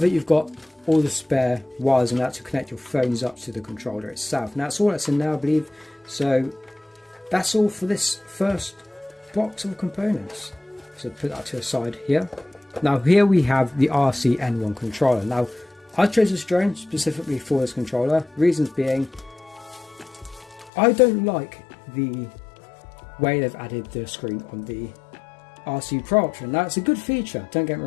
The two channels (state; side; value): drops out; right; at 20.7 s